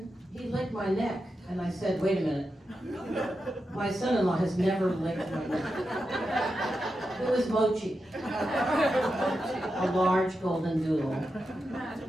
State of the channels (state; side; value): normal; both; correlation 0.88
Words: he licked my neck, and I said, wait a minute. My son-in-law has never licked my neck. It was Mochi, a large golden doodle